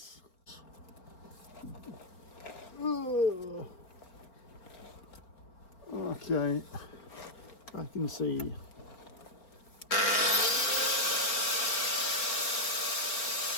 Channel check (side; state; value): right; late; 4.4 ms